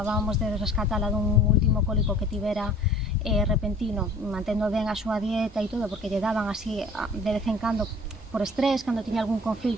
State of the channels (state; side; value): normal; both; correlation 0.49